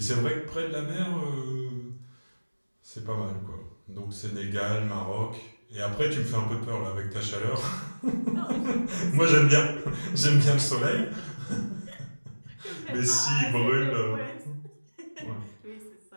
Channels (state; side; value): inverted; both; correlation -1.00